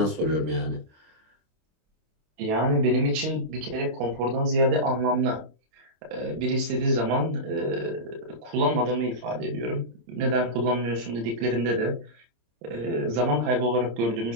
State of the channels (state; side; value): late; left; 26 ms